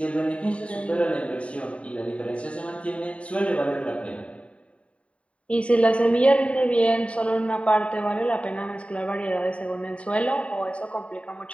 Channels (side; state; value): right; late; 0.063 ms